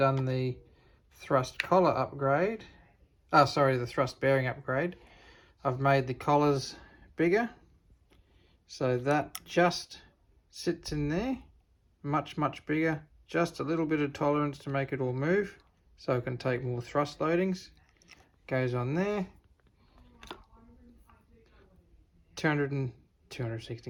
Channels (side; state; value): both; identical; correlation 1.00